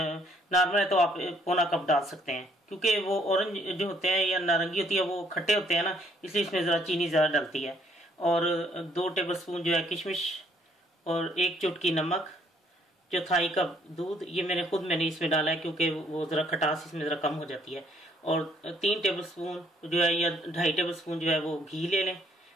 है तो आप पौना कप डाल सकते हैं, क्योंकि वो ऑरेंज जो होते हैं या नारंगी होती है वो खट्टे होते हैं ना, इसलिए इसमें जरा चीनी ज्यादा डलती है। और 2 टेबलस्पून जो है किशमिश और 1 चुटकी नमक, चौथाई कप दूध। ये मैंने इसमें डाला है क्योंकि वो जरा खटास इसमें जरा कम हो जाती है। और 3 टेबलस्पून जो है या 2.5 टेबलस्पून जो है वो घी ले लें।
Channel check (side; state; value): both; normal; correlation 0.65